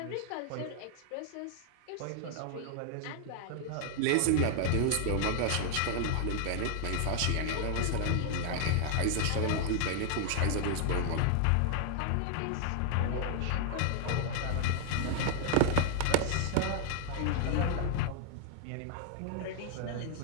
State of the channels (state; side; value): different; both; correlation 0.00